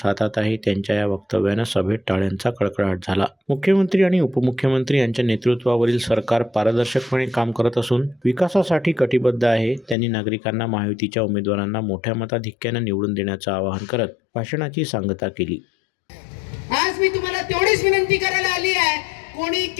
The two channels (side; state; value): right; drops out; at 10.0 s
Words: हातात आहे. त्यांच्या या वक्तव्यानं सभेत टाळ्यांचा कडकडाट झाला. मुख्यमंत्री आणि उपमुख्यमंत्री यांच्या नेतृत्वावरील सरकार पारदर्शकपणे काम करत असून विकासासाठी कटिबद्ध आहे. त्यांनी नागरिकांना महायुतीच्या उमेदवारांना मोठ्या मताधिक्याने निवडून देण्याचं आवाहन करत भाषणाची सांगता केली. आज मी तुम्हाला तेवढीच विनंती करायला आली आहे, कोणी